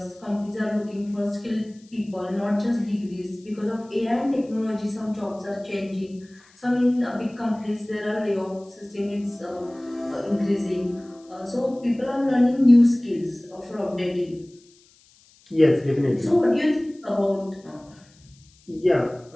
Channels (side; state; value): left; noise; hiss, 29 dB below the sound